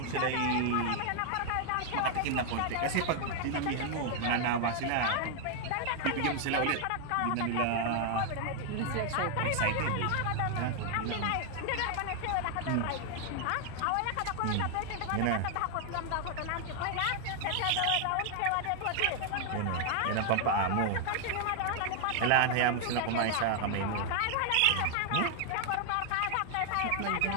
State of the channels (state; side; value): different; both; correlation 0.00